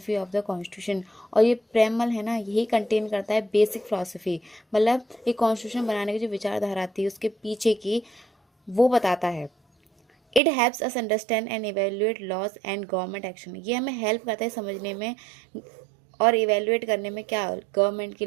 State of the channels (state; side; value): drops out; left; at 10.4 s